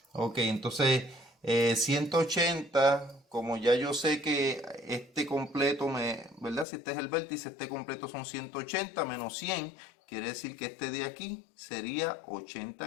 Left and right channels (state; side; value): drops out; right; at 6.7 s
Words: Ok, entonces 180, como ya yo sé que este completo ¿verdad? Si este es el vértice, este completo son 180 menos 100, quiere decir que este de aquí sería